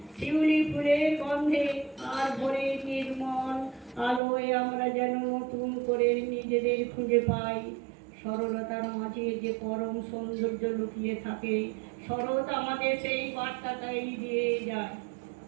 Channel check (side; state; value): left; drops out; at 4.2 s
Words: শিউলি ফুলের গন্ধে আর ভোরের নির্মল আলোয় আমরা যেন নতুন করে নিজেদের খুঁজে পাই। সরলতার মাঝে যে পরম সৌন্দর্য লুকিয়ে থাকে, শরৎ আমাদের সেই বার্তাটাই দিয়ে যায়।